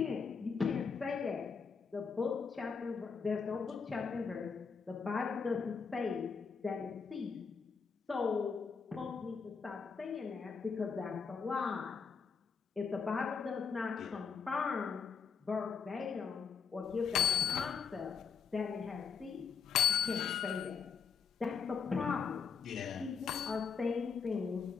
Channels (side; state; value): right; quieter; 5.9 dB